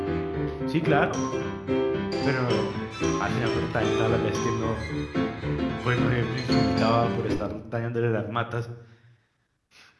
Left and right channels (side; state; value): both; identical; correlation 1.00